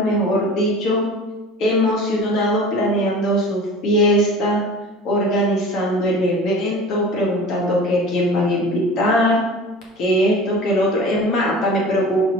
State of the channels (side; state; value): both; normal; correlation 0.39